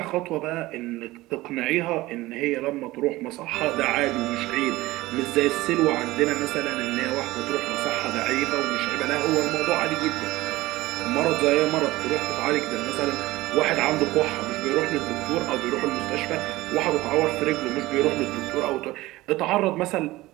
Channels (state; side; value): quieter; left; 18.6 dB